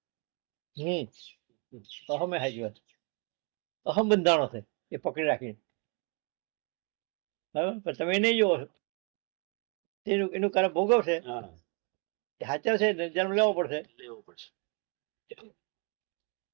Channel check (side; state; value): left; quieter; 33.5 dB